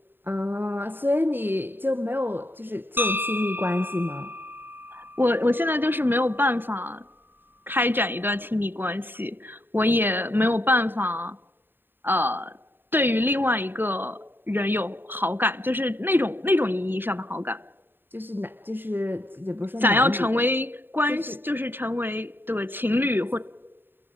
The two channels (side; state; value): left; late; 0.096 ms